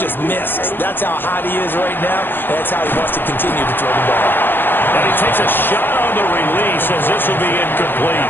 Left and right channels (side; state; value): right; late; 0.099 ms